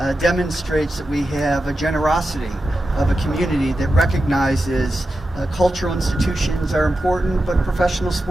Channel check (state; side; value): normal; both; correlation 0.91